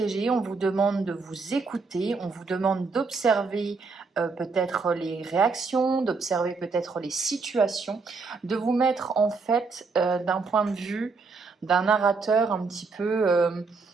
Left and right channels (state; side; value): quieter; left; 4.4 dB